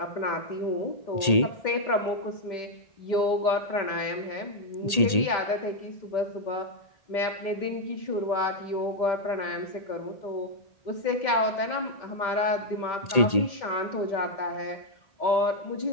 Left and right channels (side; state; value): right; late; 1.8 ms